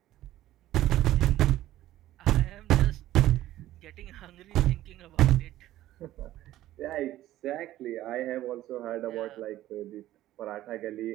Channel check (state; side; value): quieter; left; 14.3 dB